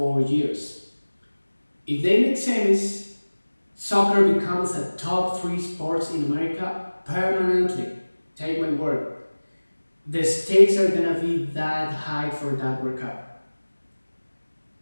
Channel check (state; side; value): inverted; both; correlation -1.00